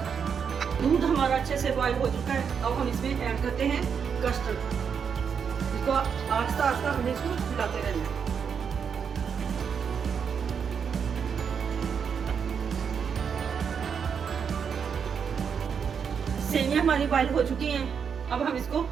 हैं। दूध हमारा अच्छे से बॉईल हो चुका है। अब हम इसमें ऐड करते हैं कस्टर्ड। इसको आस्ता आस्ता हमें इसको मिलाते रहना है। सेवियां हमारी बॉईल हो चुकी हैं। अब हम इसको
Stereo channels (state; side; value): quieter; left; 6.8 dB